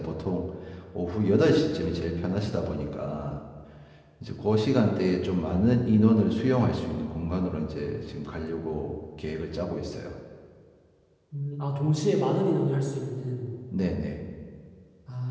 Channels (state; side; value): identical; both; correlation 1.00